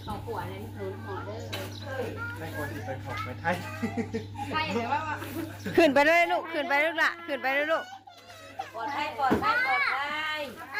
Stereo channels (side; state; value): both; identical; correlation 1.00